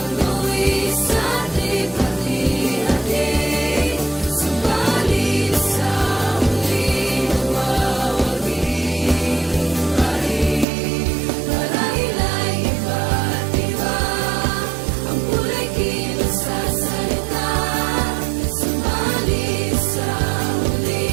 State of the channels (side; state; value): left; drops out; at 10.7 s